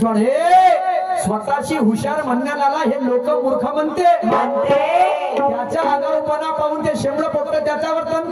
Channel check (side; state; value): both; identical; correlation 1.00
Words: वाढ हे स्वतःची हुशार म्हणण्याला हे लोक मूर्ख म्हणते, त्याच्या आगाऊपणा पाहून ते शेंबडं पोटतं त्याच्यावर